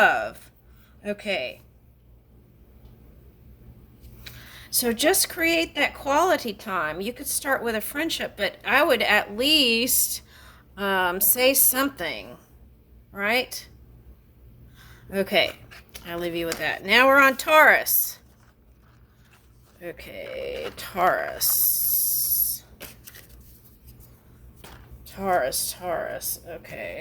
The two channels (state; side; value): identical; both; correlation 1.00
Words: Okay. So just create that quality time. You could start with a friendship, but I would at least say something, right? Okay. I'll leave you with that. Now we're on Taurus. Okay, Taurus. Taurus. Okay,